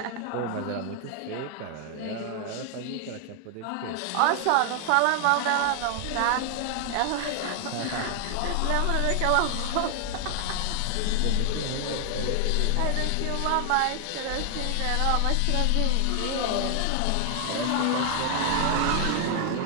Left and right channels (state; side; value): different; both; correlation 0.00